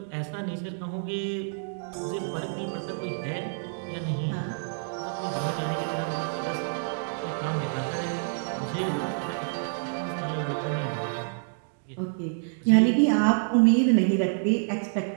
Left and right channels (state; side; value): silent; left; digital silence